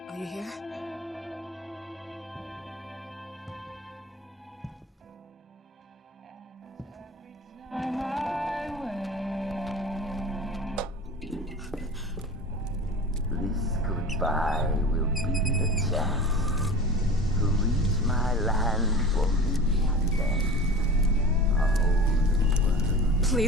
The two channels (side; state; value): both; normal; correlation 0.36